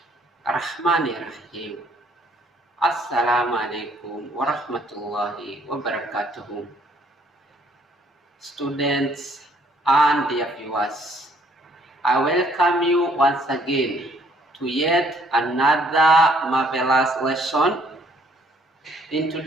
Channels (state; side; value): normal; both; correlation 0.64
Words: Ar-Rahmanir-Rahim. Assalamualaikum warahmatullahi wabarakatuh. Students and dear viewers, I welcome you once again to yet another marvelous lesson. In